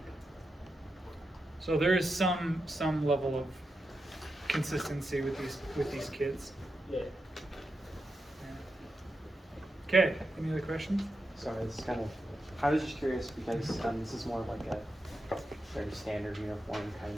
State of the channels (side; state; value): both; normal; correlation 0.87